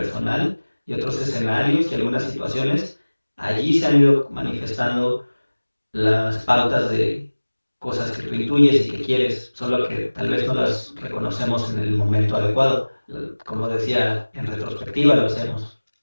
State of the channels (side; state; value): both; inverted; correlation -1.00